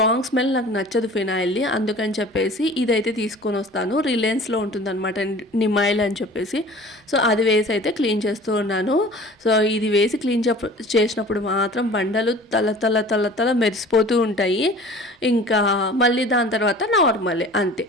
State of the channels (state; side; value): normal; both; correlation 0.44